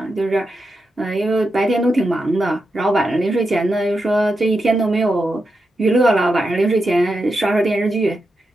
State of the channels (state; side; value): normal; both; correlation 0.87